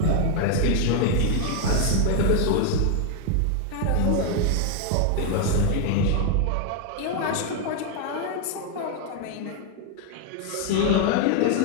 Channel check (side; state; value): both; different; correlation 0.00